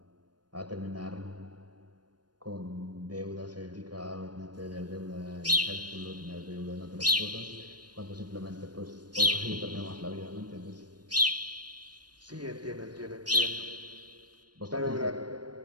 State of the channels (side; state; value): left; late; 0.69 ms